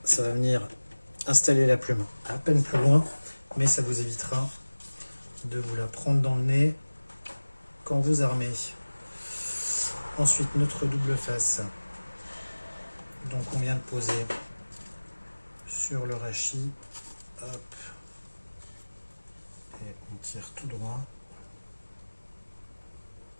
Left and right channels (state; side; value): inverted; both; correlation -1.00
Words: ça va venir installer la plume à peine plus loin, mais ça vous évitera de vous la prendre dans le nez quand vous armez. Ensuite, notre double face. Donc on vient de poser sur le rachis. Hop. Et on tire tout droit.